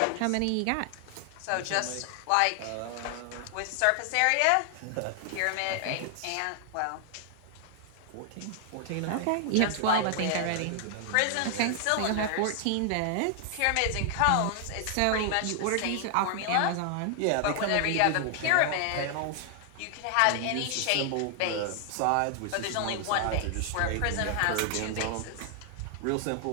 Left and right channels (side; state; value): both; different; correlation 0.00